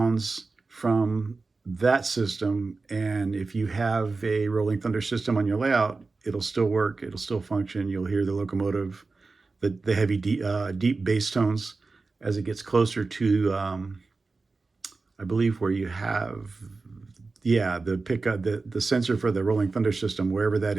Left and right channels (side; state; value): left; quieter; 3.9 dB